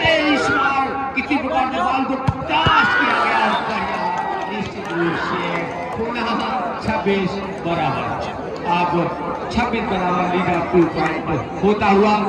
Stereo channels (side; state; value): both; identical; correlation 1.00